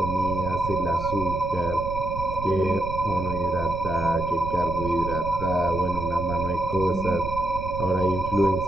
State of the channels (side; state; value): right; noise; rumble, 8 dB below the sound